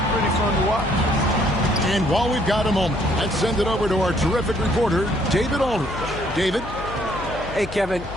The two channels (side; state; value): left; noise; hum, 12 dB below the sound